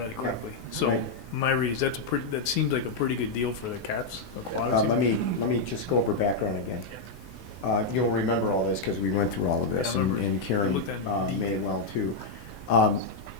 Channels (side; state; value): right; quieter; 3.6 dB